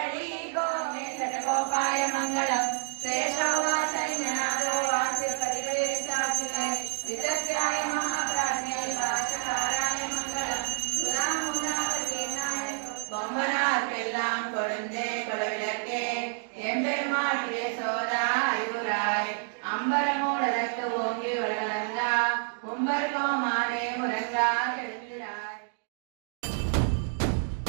గోవింద గోపాయ మంగళం శేషవాసైన్యనాథో వాసిపతిపే సాక్షినే విదగ్రాయ మహాప్రాజ్ఞే వాచకారాయ మంగళం சுதாமுலாவதீனாய கொம்பனார்க்கெல்லாம் கொழுந்தே குலவிளக்கே எம்பெருமாட்டிய சோதாயுராய் அம்பரமூடலத்து ஓங்கி உலகளந்தா உம்பர் கோமானே முரங்கா எழுந்திராய்.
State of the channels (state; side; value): silent; left; digital silence